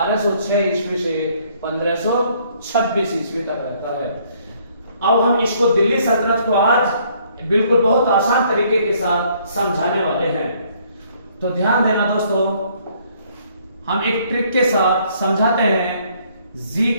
ईस्वी से 1526 ईस्वी तक रहता है। अब हम इसको दिल्ली सल्तनत को आज बिल्कुल बहुत आसान तरीके के साथ समझाने वाले हैं। तो ध्यान देना दोस्तों, हम एक ट्रिक के साथ समझाते हैं।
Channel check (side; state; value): both; inverted; correlation -0.64